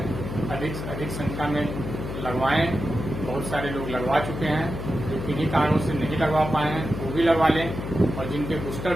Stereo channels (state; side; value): noise; left; hum, 6 dB below the sound